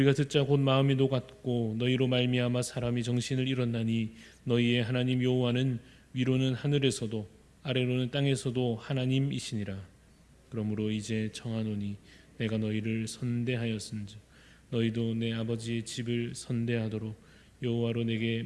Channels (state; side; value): identical; both; correlation 1.00